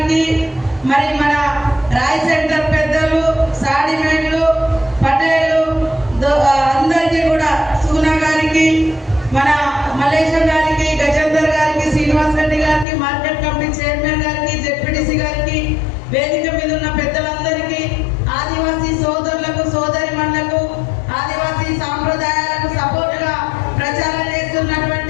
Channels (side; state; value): right; drops out; at 12.9 s